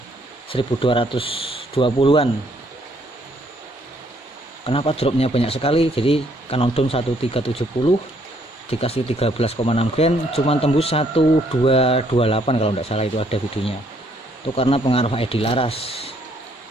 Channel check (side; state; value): both; normal; correlation 0.68